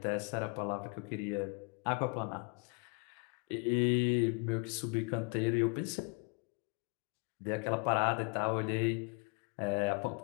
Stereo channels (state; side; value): quieter; right; 34.5 dB